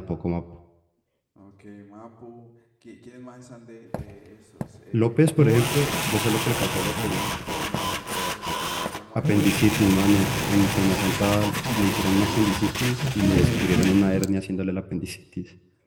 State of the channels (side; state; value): both; identical; correlation 1.00